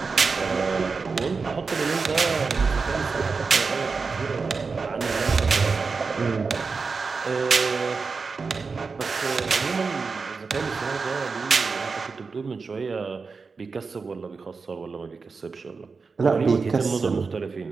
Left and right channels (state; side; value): quieter; left; 4.7 dB